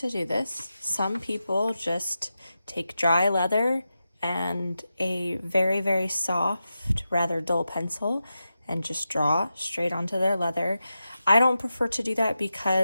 do this. Some people just take dry leather and a very, very soft, rather dull pencil and just draw straight onto their leather. I don't prefer to do that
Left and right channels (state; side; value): inverted; both; correlation -0.91